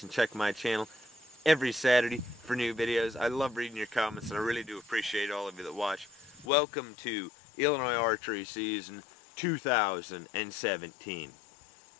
and check my channel every Saturday for new videos. I love reading your comments, and I really do appreciate all of you that watch. Welcome to Illinois Archery season 2017.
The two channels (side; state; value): right; drops out; at 6.5 s